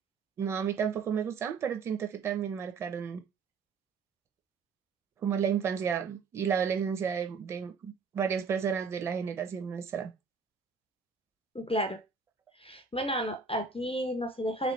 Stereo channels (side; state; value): left; quieter; 5.0 dB